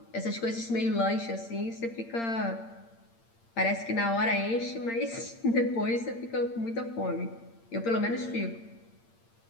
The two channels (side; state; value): right; late; 8.7 ms